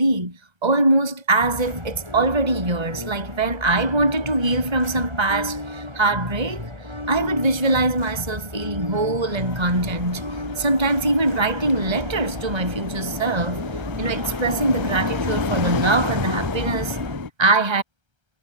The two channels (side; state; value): left; late; 1.3 ms